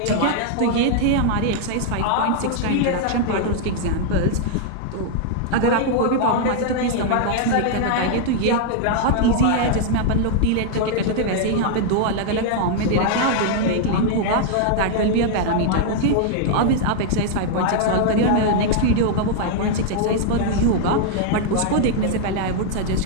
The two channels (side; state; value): both; different; correlation -0.01